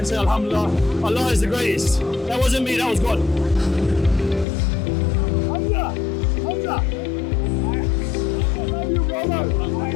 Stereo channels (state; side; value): drops out; right; at 4.5 s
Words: say, alhamdulillah. Allah is the greatest. That wasn't me, that was God. Hamzah! Hamzah! I love you, brother!